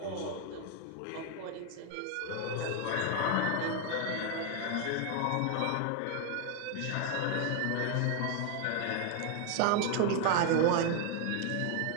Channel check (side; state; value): both; different; correlation 0.01